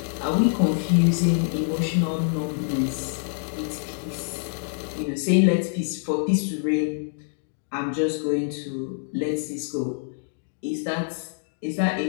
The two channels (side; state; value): right; silent; digital silence